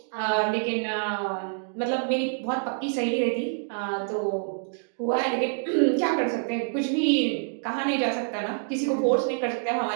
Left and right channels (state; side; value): silent; left; digital silence